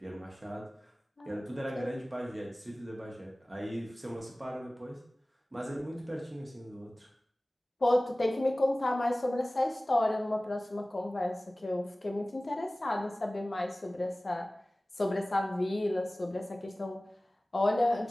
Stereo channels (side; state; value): both; normal; correlation 0.98